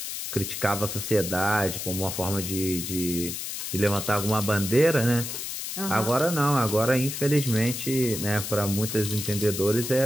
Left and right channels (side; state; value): left; noise; hiss, 6 dB below the sound